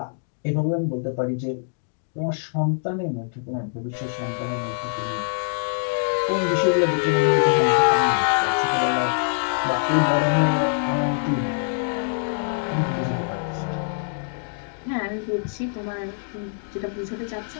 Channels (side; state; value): right; silent; digital silence